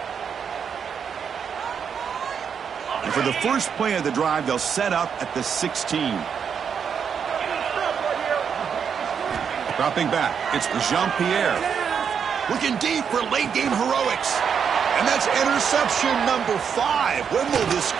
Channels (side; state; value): left; quieter; 7.1 dB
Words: And for the first play of the drive, they'll set up at the 16. Dropping back, it's Jean-Pierre. Looking deep for late-game heroics. And that's interception number 5. When will this